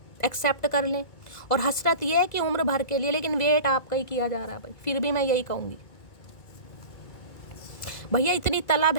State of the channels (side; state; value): right; late; 2.2 ms